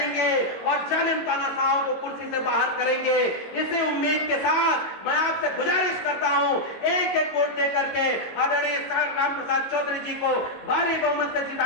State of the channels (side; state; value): right; late; 22 ms